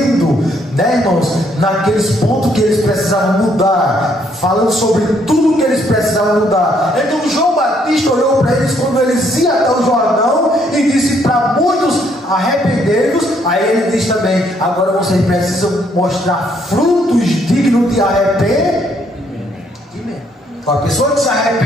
né, irmãos, naqueles pontos que eles precisavam mudar, falando sobre tudo que eles precisavam mudar. Então João Batista olhou para eles quando eles iam até o Jordão e disse para muitos, arrependei-vos. Aí ele diz também, agora vocês precisam mostrar frutos dignos de arrependimento. A pessoa que se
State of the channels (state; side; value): normal; both; correlation 0.69